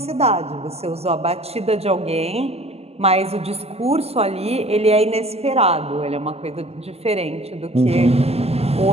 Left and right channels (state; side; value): late; left; 0.29 ms